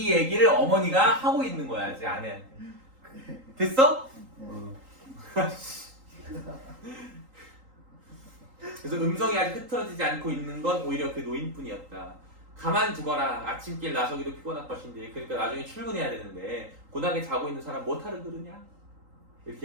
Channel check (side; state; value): left; late; 3.8 ms